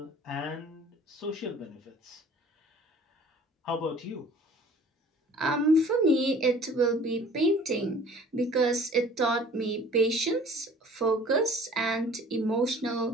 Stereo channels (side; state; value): both; normal; correlation 0.49